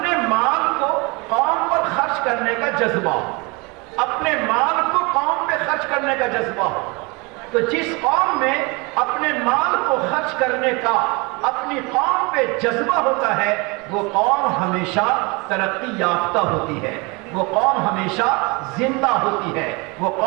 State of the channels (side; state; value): left; quieter; 27.6 dB